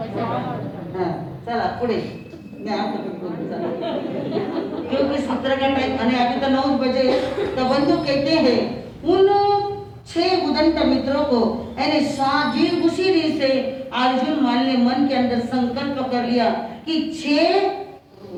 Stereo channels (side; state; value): both; identical; correlation 1.00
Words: हाँ, चला पुढे मैं आपको क्योंकि सूत्र का टाइम अभी तो 9 बजे। तो बंधु कहते हैं उन 6 उदंत मित्रों को यानी साजी उसी दिन से अर्जुन मान ने मन के अंदर संकल्प कर लिया कि 6